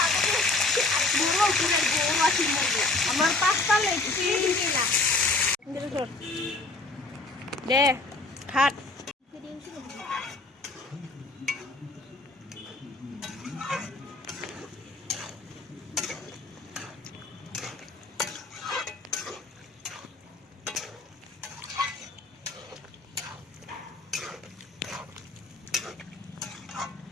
আমার 5টা লেগছি দে খাট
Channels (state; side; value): quieter; right; 3.2 dB